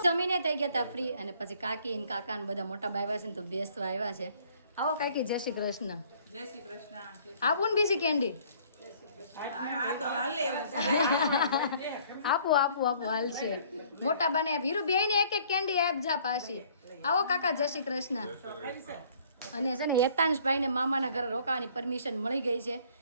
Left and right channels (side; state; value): both; inverted; correlation -0.58